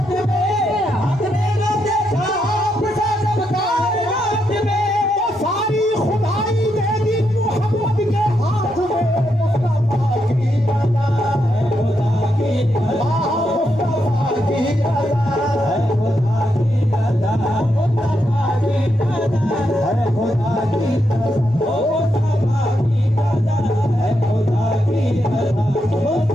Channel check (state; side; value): normal; both; correlation 0.81